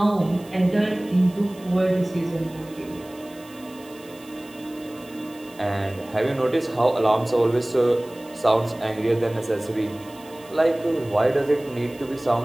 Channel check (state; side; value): noise; right; hiss, 23 dB below the sound